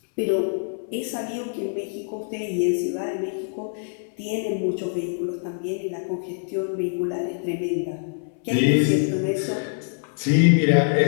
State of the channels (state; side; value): silent; right; 62 dB below the other